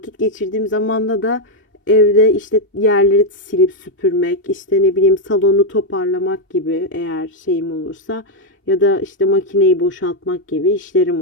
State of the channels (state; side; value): normal; both; correlation 0.01